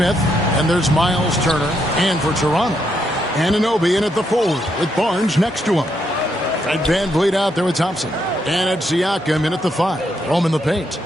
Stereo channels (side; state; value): both; normal; correlation 0.78